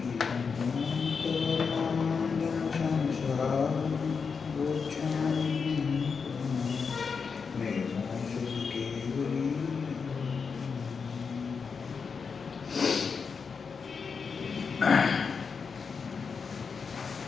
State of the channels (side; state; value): right; quieter; 5.5 dB